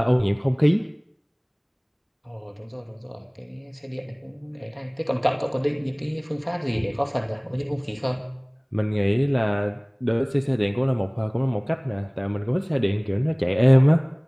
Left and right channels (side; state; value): both; identical; correlation 1.00